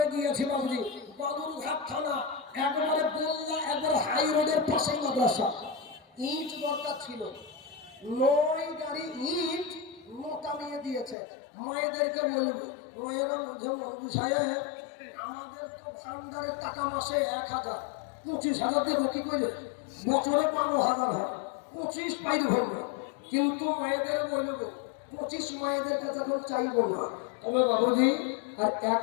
গিয়েছি বাবুজি, বাদুরঘাট থানা, একবারে বললা একবার হাই রোডের পাশে মাদ্রাসা। ইট দরকার ছিল, 9 গাড়ি ইট মোটা নিয়ে দিয়েছে। মায়েদেরকে বলবো মায়েরা সাহেব আমাদের তো ভান্ডারের টাকা মাসে 1,000, 25,000 দেবো কি করে, বছরে 12,000 হয়, 25 পাইর ভরবো। কিন্তু মায়েদের বলবো 25 মায়েদের কাছে এখন চাইবো না। তবে বাবুজি আর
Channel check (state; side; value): drops out; right; at 11.2 s